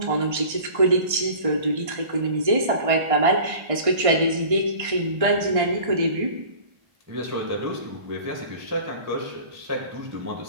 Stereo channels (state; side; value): late; left; 1.6 ms